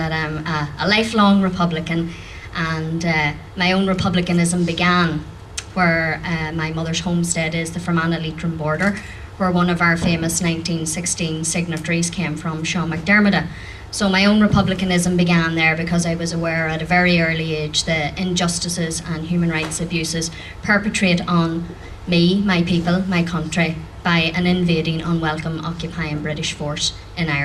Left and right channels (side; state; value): both; identical; correlation 1.00